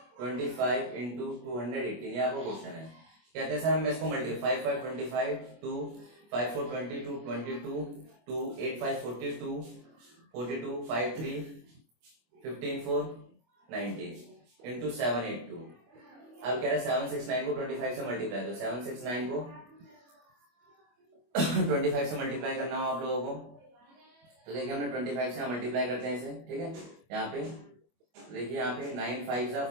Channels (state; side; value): late; left; 25 ms